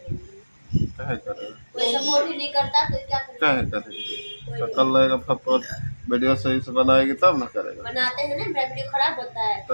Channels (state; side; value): inverted; both; correlation -1.00